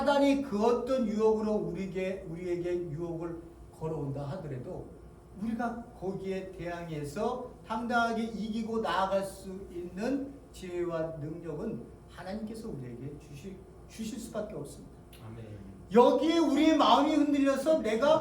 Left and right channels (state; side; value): identical; both; correlation 1.00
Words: 그 어떤 유혹으로 우리에게 유혹을 걸어온다 하더라도 우리가 거기에 대항해서 당당하게 이기고 나아갈 수 있는 지혜와 능력은 하나님께서 우리에게 주실 수밖에 없습니다. 아멘. 여기에 우리의 마음이 흔들려서